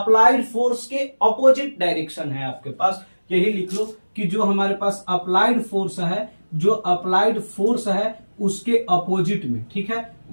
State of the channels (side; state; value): both; inverted; correlation -1.00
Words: फोर्स के अपोजिट डायरेक्शन है आपके पास, यही लिख लो कि जो हमारे पास अप्लाइड फोर्स है, जो अप्लाइड फोर्स है उसके अपोजिट में, ठीक है,